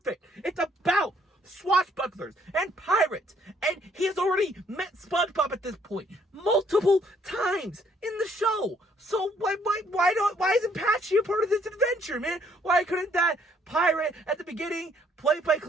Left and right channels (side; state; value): both; normal; correlation 0.66